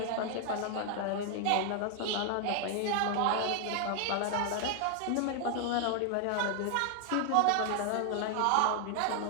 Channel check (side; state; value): both; different; correlation 0.00